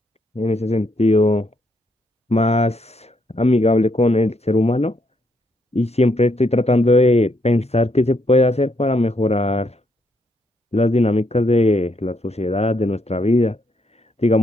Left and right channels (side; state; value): both; normal; correlation 0.75